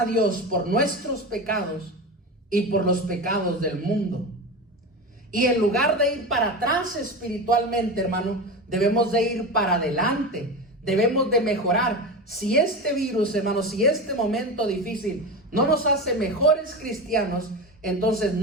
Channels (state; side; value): normal; both; correlation 0.24